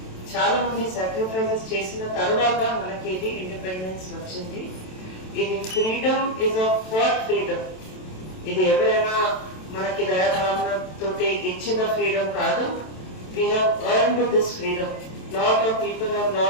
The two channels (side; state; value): right; late; 27 ms